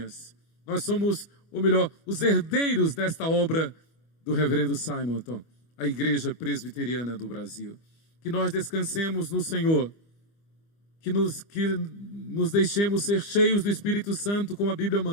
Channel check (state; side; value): late; right; 25 ms